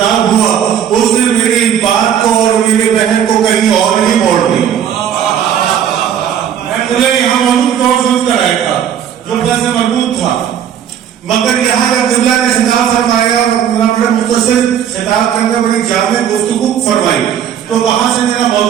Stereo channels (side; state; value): left; quieter; 9.2 dB